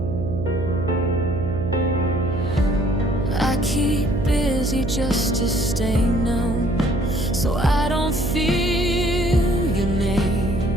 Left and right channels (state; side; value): noise; right; hum, 4 dB below the sound